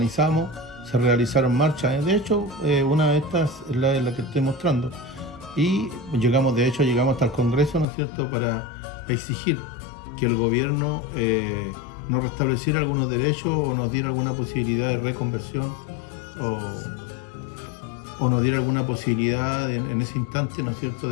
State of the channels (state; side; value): drops out; right; at 7.9 s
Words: se realizaron marchas. De hecho, una de estas es la que estoy mostrando. Y llegamos hasta el Congreso, ¿no es cierto?, para exigir que el gobierno nos restableciera algunos derechos o nos diera alguna posibilidad de reconversión o nos diera alguna posibilidad en ese instante, ¿no es cierto?,